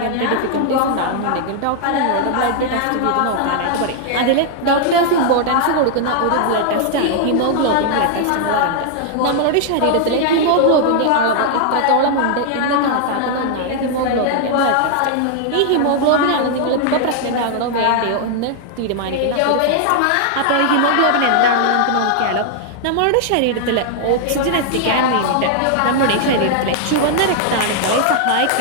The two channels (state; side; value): different; both; correlation -0.01